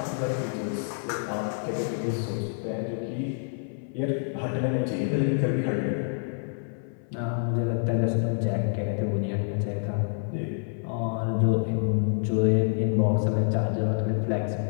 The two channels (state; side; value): silent; right; 60 dB below the other